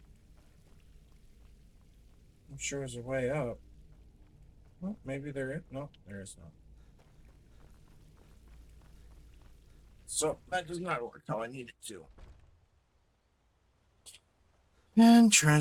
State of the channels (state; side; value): identical; both; correlation 1.00